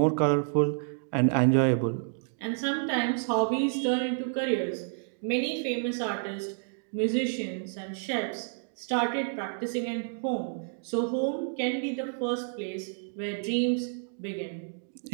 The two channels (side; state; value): left; silent; digital silence